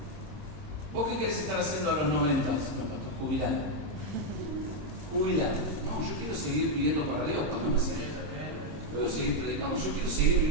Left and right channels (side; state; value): left; late; 26 ms